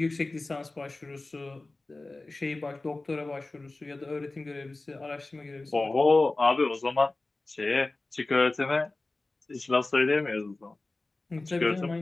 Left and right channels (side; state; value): right; quieter; 3.1 dB